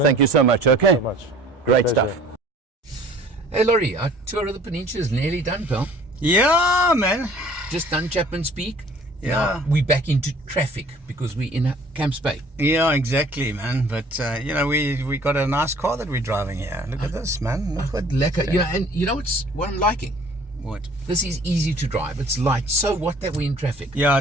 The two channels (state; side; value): normal; both; correlation 0.52